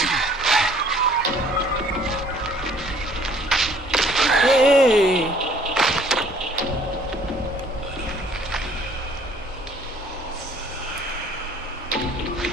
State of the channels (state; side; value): normal; both; correlation 0.57